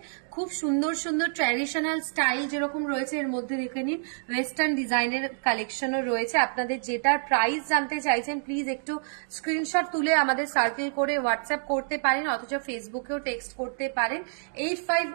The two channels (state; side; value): silent; left; digital silence